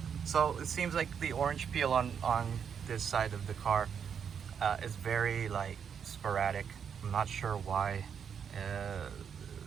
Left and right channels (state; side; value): quieter; left; 7.4 dB